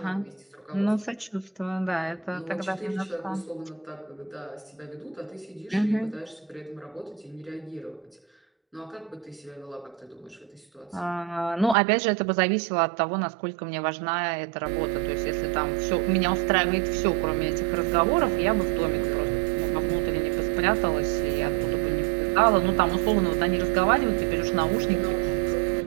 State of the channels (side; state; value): left; drops out; at 11.8 s